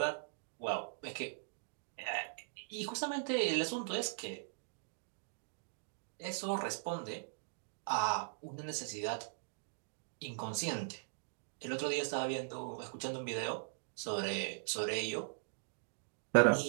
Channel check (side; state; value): left; silent; digital silence